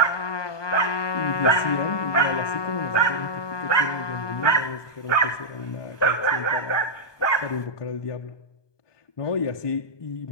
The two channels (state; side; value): late; right; 1.2 ms